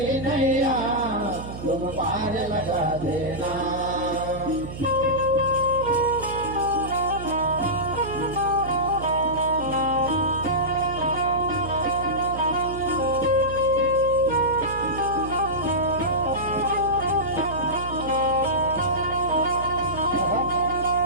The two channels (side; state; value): right; noise; hum, 10 dB below the sound